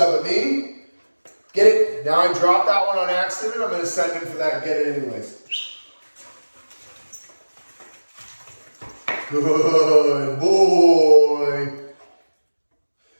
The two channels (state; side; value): inverted; both; correlation -1.00